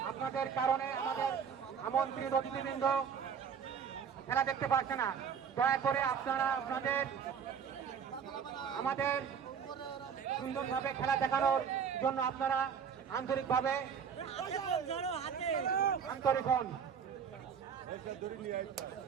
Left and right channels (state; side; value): quieter; left; 7.1 dB